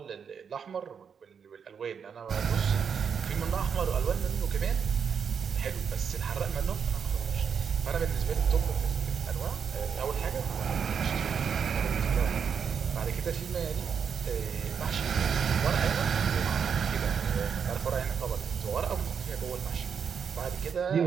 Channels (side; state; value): left; quieter; 6.9 dB